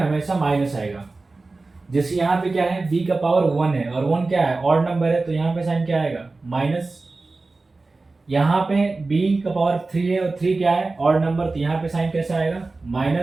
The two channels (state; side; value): quieter; left; 3.5 dB